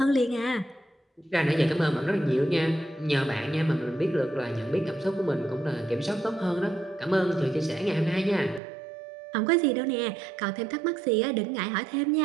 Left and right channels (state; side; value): drops out; left; at 8.6 s